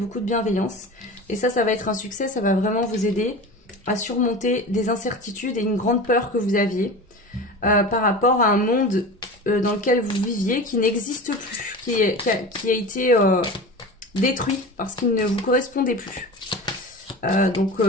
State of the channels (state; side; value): normal; both; correlation 0.32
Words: de bienveillance. Et ça va être un succès, ça va vraiment vous aider à surmonter des incertitudes et une grande peur que vous aviez par rapport à un monde dans lequel vous viviez qui n'existe plus, qui a été détruit parce qu'il ne vous correspondait plus. Donc